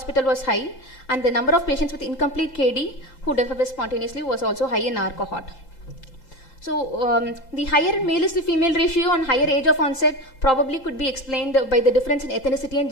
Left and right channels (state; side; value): late; right; 5.8 ms